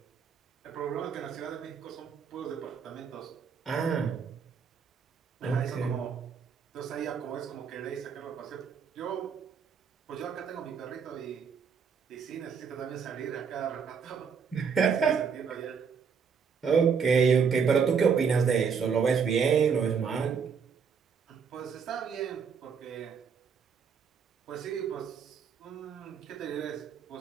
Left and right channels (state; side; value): quieter; left; 6.4 dB